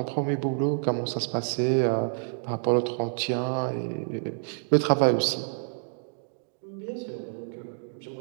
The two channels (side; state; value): left; silent; digital silence